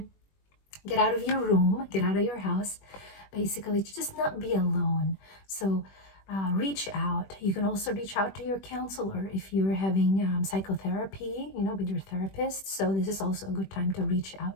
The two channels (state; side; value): late; right; 21 ms